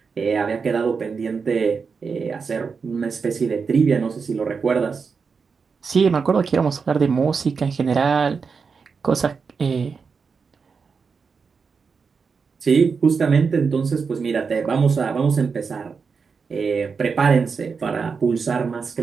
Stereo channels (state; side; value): quieter; left; 5.4 dB